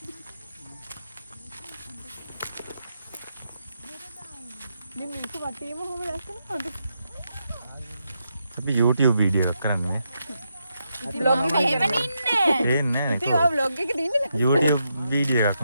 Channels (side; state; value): both; inverted; correlation -0.83